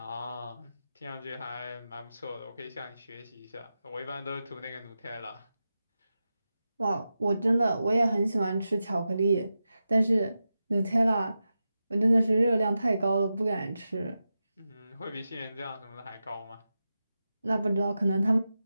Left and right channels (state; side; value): inverted; both; correlation -0.91